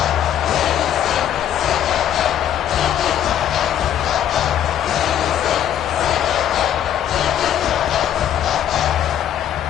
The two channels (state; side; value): quieter; right; 10.4 dB